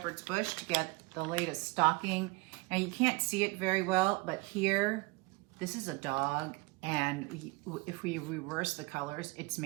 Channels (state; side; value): quieter; left; 24.8 dB